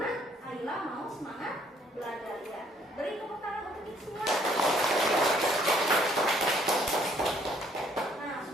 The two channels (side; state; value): both; normal; correlation 0.64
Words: Ayla mau semangat belajar ya. Beri tepuk tangan untuk kita semua. Nah